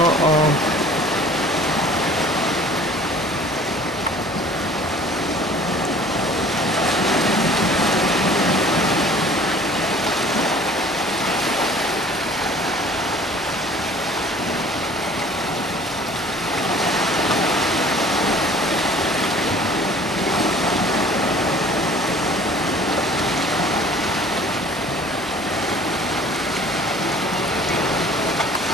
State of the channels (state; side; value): normal; both; correlation 0.49